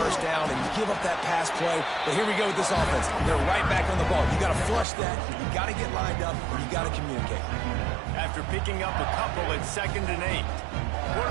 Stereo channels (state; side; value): drops out; left; at 4.9 s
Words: down and you give up that pass play. But here we go with this offense. They're right back on the ball. You got to flush that. You got to get lined up. You got to communicate. After picking up a couple at 2nd and 8.